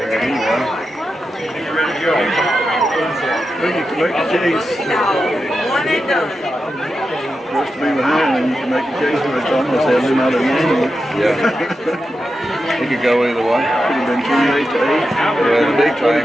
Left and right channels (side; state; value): both; normal; correlation 0.90